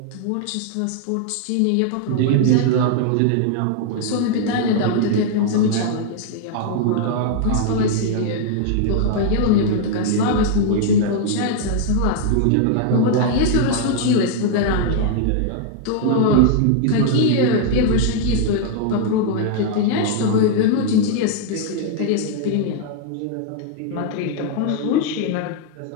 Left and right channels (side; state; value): both; different; correlation 0.00